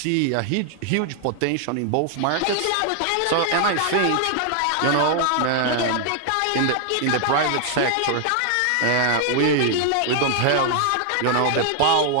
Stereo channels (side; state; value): both; different; correlation 0.00